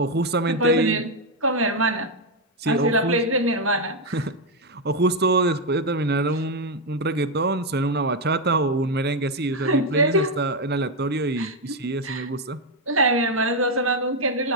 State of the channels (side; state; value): both; normal; correlation 0.04